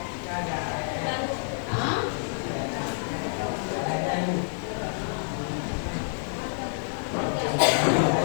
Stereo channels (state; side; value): silent; right; 59 dB below the other